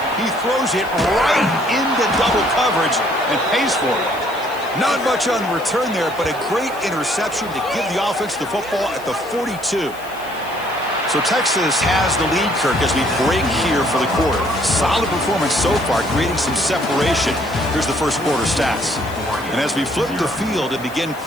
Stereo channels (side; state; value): left; noise; hiss, 20 dB below the sound